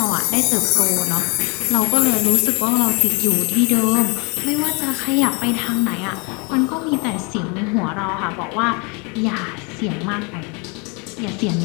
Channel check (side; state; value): right; quieter; 32.0 dB